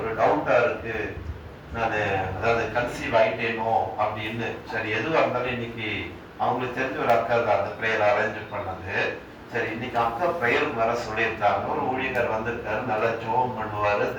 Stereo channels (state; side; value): identical; both; correlation 1.00